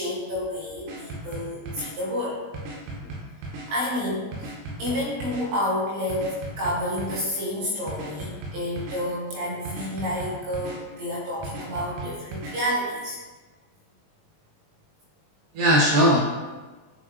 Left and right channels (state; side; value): late; left; 20 ms